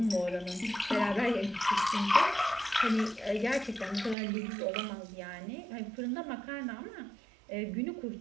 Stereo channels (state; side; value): drops out; left; at 4.2 s